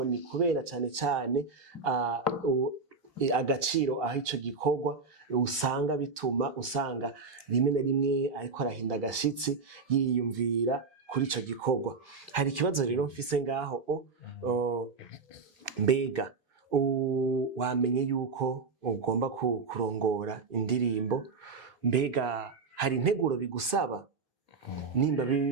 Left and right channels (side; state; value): left; quieter; 4.6 dB